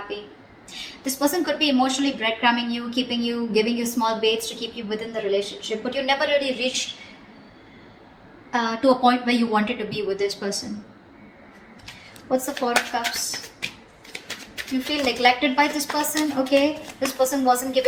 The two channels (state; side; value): identical; both; correlation 1.00